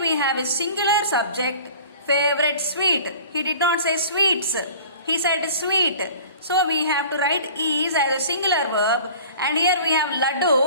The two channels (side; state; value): both; inverted; correlation -0.44